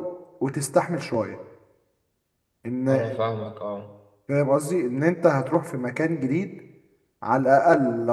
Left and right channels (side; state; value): both; identical; correlation 1.00